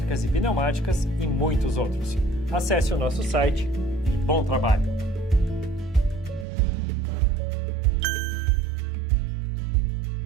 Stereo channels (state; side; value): drops out; left; at 6.5 s